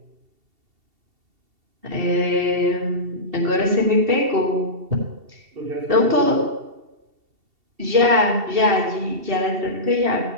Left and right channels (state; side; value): late; left; 2.7 ms